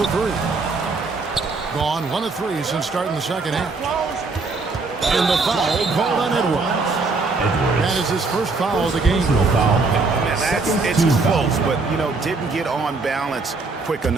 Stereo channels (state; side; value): quieter; left; 3.9 dB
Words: the 3. Gone 1 of 3 since starting the second half. And the foul called on Edwards. That is his first foul of the game. It's close, but, you know, didn't get on balance quick